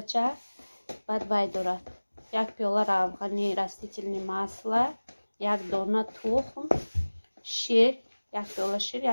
چای. بعد باید دارد 1 پیاله افغانی رستительное масло، 1 دانه تخم، شیر، 1 پیاله شیر،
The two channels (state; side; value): inverted; both; correlation -1.00